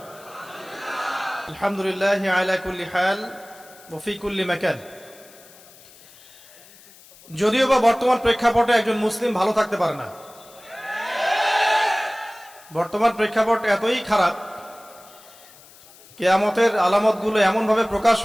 আলহামদুলিল্লাহ আলা কুল্লি হাল ওয়া ফি কুল্লি মাকান। যদিও বা বর্তমান প্রেক্ষাপটে একজন মুসলিম ভালো থাকতে পারে না। বর্তমান প্রেক্ষাপট এতই খারাপ, কিয়ামতের আলামতগুলো এমনভাবে প্রকাশ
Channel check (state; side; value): noise; left; hiss, 23 dB below the sound